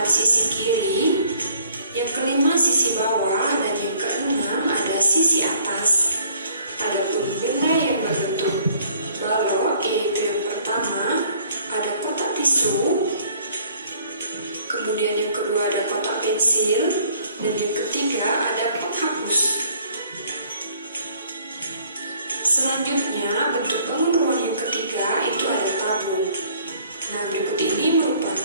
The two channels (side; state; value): both; inverted; correlation -0.59